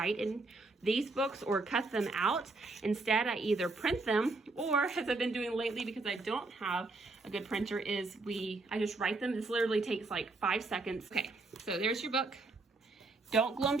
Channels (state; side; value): quieter; left; 3.4 dB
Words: in these books or cut them out. Instead, I either print them, or as I've been doing lately because I don't have a good printer, is I just write them. This literally takes like 5 seconds. Okay, so there's your book. Don't glue them